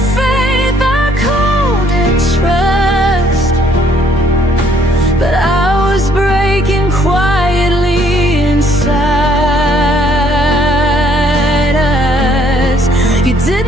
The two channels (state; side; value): normal; both; correlation 0.65